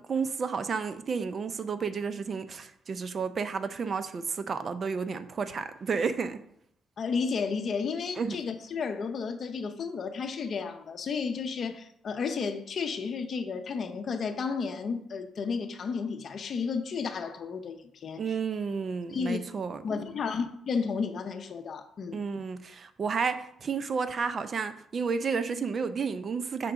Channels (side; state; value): both; normal; correlation 0.75